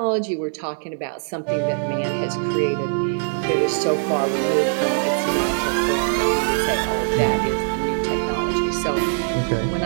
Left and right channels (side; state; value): left; silent; 64 dB below the other